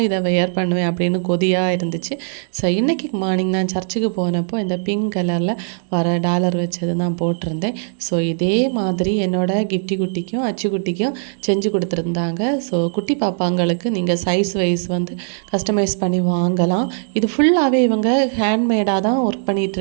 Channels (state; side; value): silent; left; digital silence